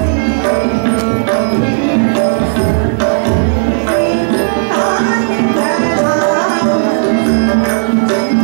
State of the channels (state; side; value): silent; left; digital silence